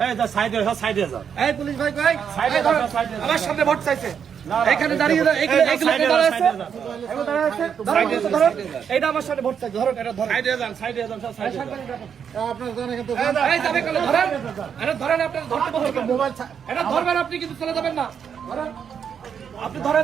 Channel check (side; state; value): left; quieter; 7.5 dB